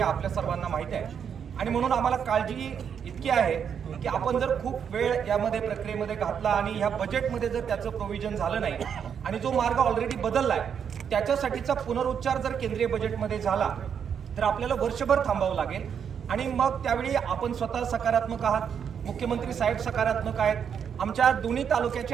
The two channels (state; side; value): quieter; left; 7.6 dB